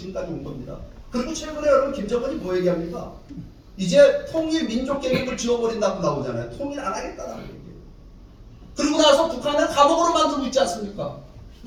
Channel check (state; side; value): identical; both; correlation 1.00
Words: 온 겁니다. 그리고 최근에 여러분 김정은이 뭐 얘기합니까? 이제 통일 민족 계획을 지워버린다고 나오잖아요. 통일 안 하겠다라는 얘기예요. 그리고 나서 북한을 감옥으로 만들고 있지 않습니까?